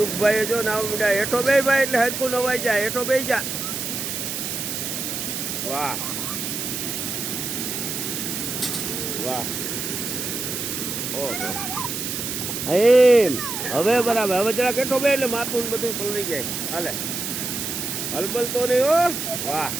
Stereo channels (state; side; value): noise; right; hiss, 4 dB below the sound